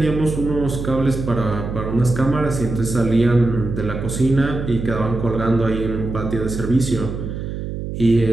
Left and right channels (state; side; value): noise; right; hum, 6 dB below the sound